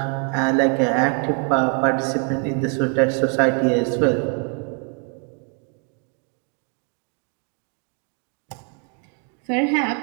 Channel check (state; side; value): quieter; left; 39.9 dB